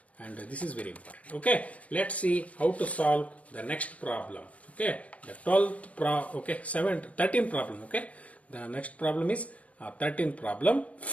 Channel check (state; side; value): late; right; 0.066 ms